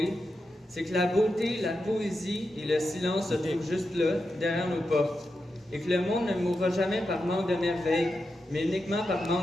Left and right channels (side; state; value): both; normal; correlation 0.88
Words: c'est que la beauté, la poésie et le silence se trouvent juste là, derrière nos portes, et que le monde ne mourra jamais par manque de merveille, mais uniquement par